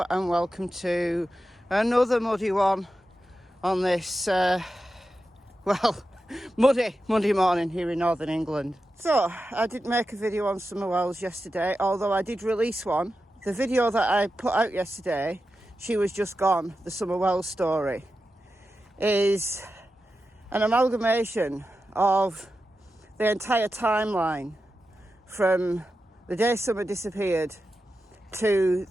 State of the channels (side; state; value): both; normal; correlation 0.91